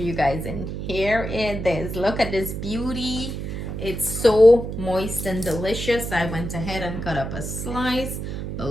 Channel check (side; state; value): right; noise; hum, 5 dB below the sound